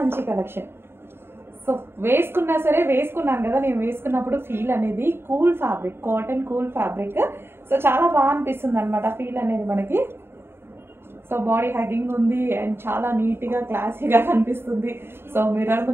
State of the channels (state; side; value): late; left; 0.11 ms